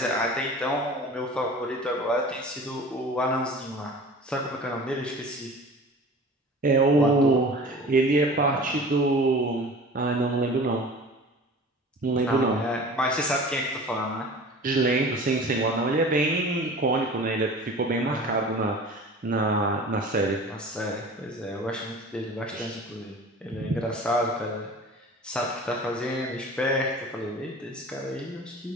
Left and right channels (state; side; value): normal; both; correlation 0.40